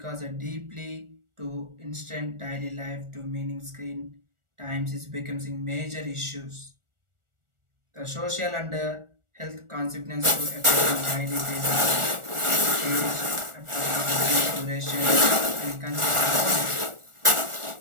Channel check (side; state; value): left; late; 1.4 ms